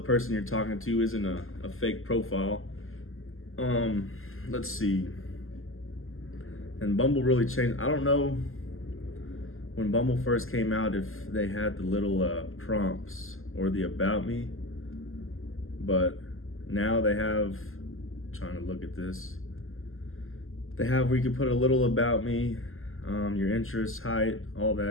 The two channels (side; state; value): right; late; 0.60 ms